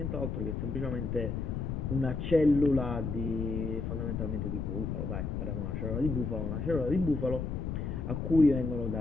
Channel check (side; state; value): left; noise; rumble, 2 dB below the sound